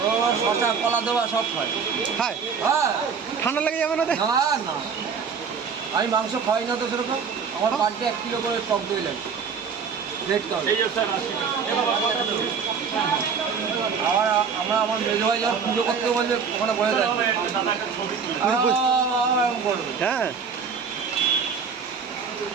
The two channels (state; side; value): quieter; left; 6.1 dB